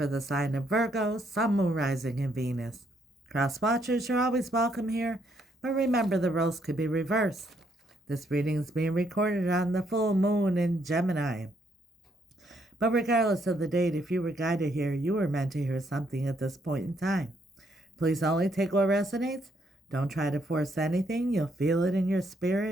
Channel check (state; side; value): normal; both; correlation 0.72